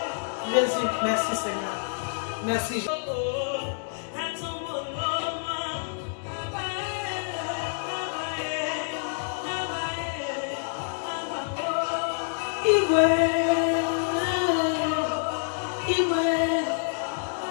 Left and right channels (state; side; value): silent; right; digital silence